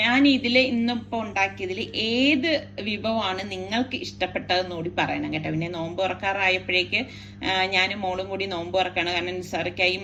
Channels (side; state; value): both; identical; correlation 1.00